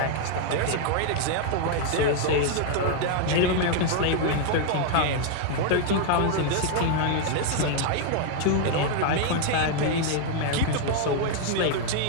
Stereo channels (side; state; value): both; different; correlation 0.00